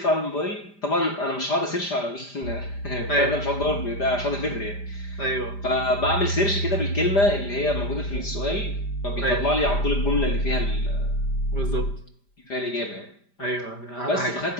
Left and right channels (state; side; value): late; right; 5.0 ms